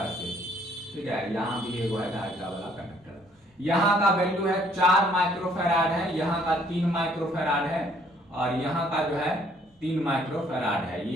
से, ठीक है। यहाँ भी एक है धारिता वाला कंडक्टर। यहाँ का वैल्यू है 4 माइक्रोफैराड है, यहाँ का 3 माइक्रोफैराड है, और यहाँ का जो है 3 माइक्रोफैराड है।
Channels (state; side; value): normal; both; correlation 0.63